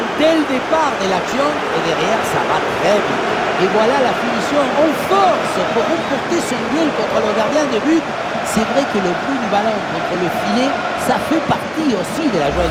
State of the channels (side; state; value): both; identical; correlation 1.00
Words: dès le départ de l'action et derrière ça va très vite. Et voilà la finition en force pour remporter son duel contre le gardien de but. C'est vrai que le bruit du ballon contre le filet, ça fait partie aussi de la joie